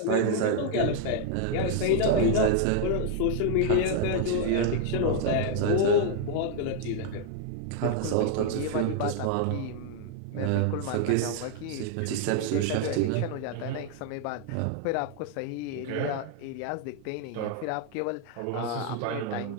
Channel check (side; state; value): both; different; correlation 0.00